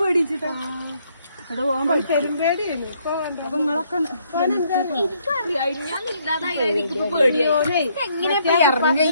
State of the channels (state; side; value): inverted; both; correlation -0.69